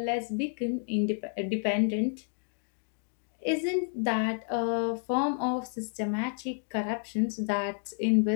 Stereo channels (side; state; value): right; silent; 58 dB below the other